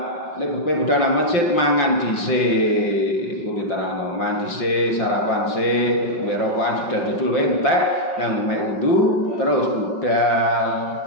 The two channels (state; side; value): late; right; 5.7 ms